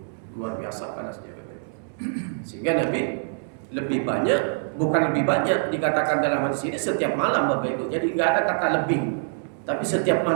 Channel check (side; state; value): left; silent; digital silence